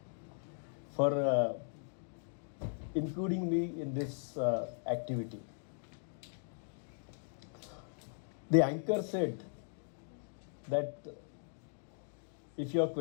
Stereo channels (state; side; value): silent; right; digital silence